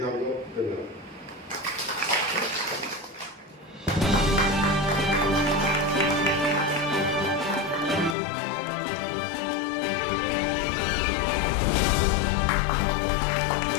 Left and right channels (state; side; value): drops out; right; at 8.2 s